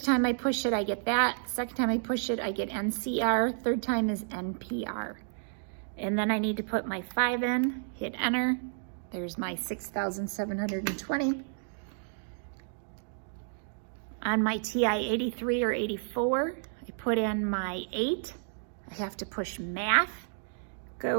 time I push it, I get that. Second time I push it, I get NCR. Third time is NPR. And then I need to put my 5 in, hit enter. There's my 6,720. On my TI-83 or 84, I put in my 8. I have to push math,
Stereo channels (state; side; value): silent; left; digital silence